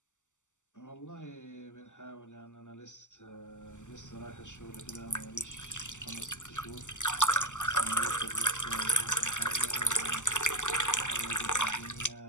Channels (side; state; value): right; late; 0.85 ms